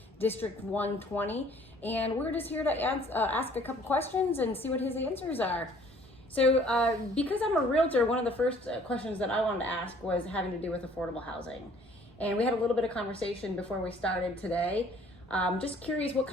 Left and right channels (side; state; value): both; normal; correlation 0.56